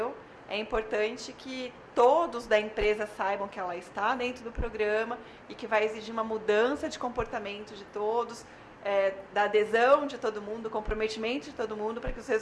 é importante que todos da empresa saibam que ela está dentro do programa e que vai exigir uma mudança de comportamento de todos, da adesão de todo mundo, do comprometimento de todo mundo, para que os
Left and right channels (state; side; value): identical; both; correlation 1.00